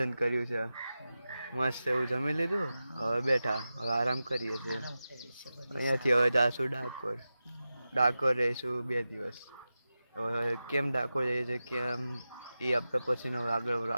કર્યું છે મસ્ત એવું જમી લીધું. હવે બેઠા, હવે આરામ કરીએ છીએ. અહીંયાથી હવે જાશું ડાકોર. ડાકોર રહીશું 2 દિવસ. હવે કેમ ડાકોર જઈએ છીએ કેમ એ આપણે પછીનો આગળ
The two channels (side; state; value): both; inverted; correlation -0.94